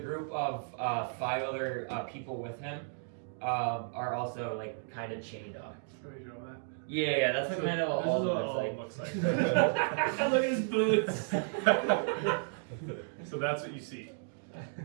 of 5 other people with him are also like kind of chained up. Can we draw that? Yeah, that's like kind of what Alden looks like. Look at his boots. So that's what you see.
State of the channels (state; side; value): silent; left; digital silence